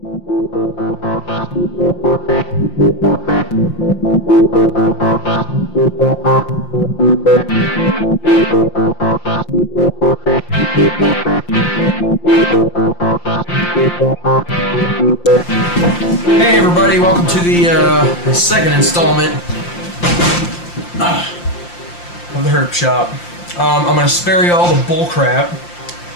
everybody, welcome to the second installment of the Herpshop. I'm going to spare you all the bull crap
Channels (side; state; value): right; late; 5.7 ms